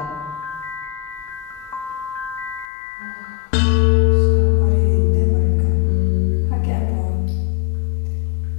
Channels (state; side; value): drops out; right; at 2.7 s